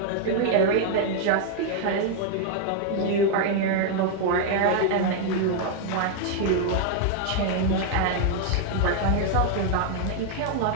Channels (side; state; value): both; different; correlation 0.00